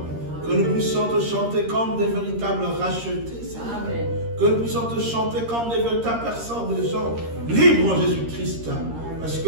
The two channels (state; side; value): late; left; 13 ms